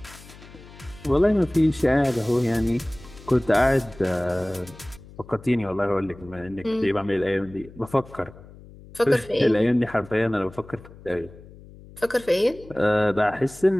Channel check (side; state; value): left; noise; hum, 20 dB below the sound